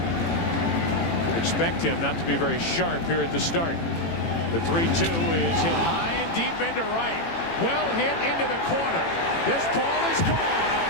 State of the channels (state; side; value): late; right; 18 ms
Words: Expect him not to be very sharp here at the start. The 3-2 is hit high and deep into right. Well hit into the corner. This ball is gone. A